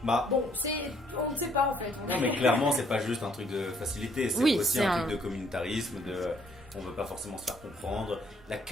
Bah, Bon, on ne sait pas en fait. non, mais clairement, c'est pas juste un truc de facilité, c'est Oui, aussi c'est un un- truc de communautarisme, on veut pas forcément se faire comprendre, la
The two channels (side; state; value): both; normal; correlation 0.66